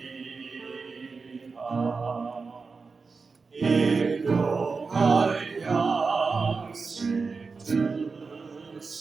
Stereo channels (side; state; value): left; quieter; 4.6 dB